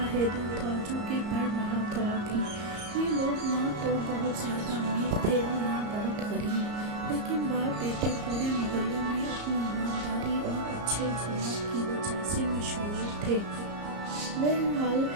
हैदर था जो कि पढ़ रहा था अभी। ये लोग ना तो बहुत ज़्यादा अमीर थे और ना बहुत गरीब, लेकिन बाप बेटे पूरे मोहल्ले में अपनी ईमानदारी और अच्छे अखलाक की वजह से मशहूर थे। बहरहाल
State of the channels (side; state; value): left; late; 34 ms